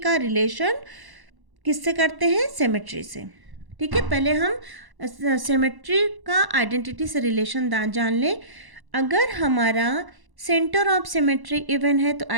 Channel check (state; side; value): late; left; 1.1 ms